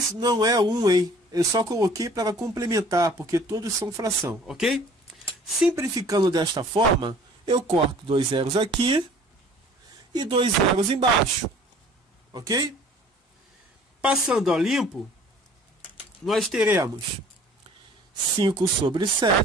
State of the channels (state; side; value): normal; both; correlation 0.51